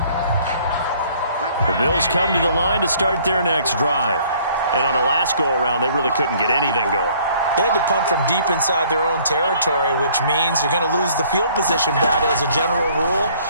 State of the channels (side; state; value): both; inverted; correlation -0.58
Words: The Bills come to the line to start their next drive. And on the last go-around, they really couldn't get anything going. They had to punt from deep inside their own territory, which means you're going to lose the field position battle as a general rule.